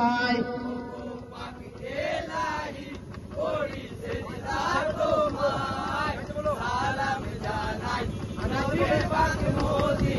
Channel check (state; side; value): identical; both; correlation 1.00